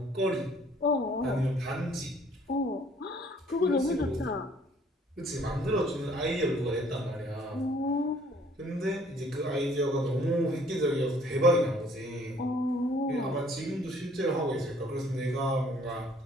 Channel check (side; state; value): both; normal; correlation 0.59